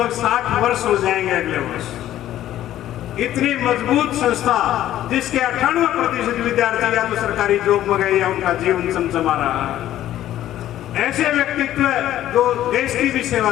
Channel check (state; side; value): quieter; right; 12.8 dB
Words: 60 वर्ष हो जाएंगे अगले वर्ष। इतनी मजबूत संस्था जिसके 98% विद्यार्थी या तो सरकारी जॉब में गए या उनका जीवन चमचमा रहा है। ऐसे व्यक्तित्व जो देश की भी सेवा